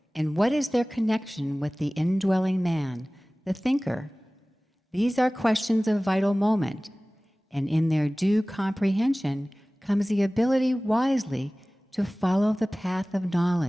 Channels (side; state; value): both; normal; correlation 0.98